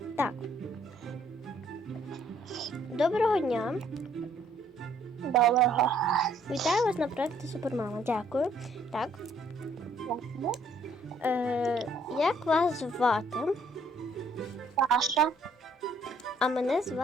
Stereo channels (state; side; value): normal; both; correlation 0.64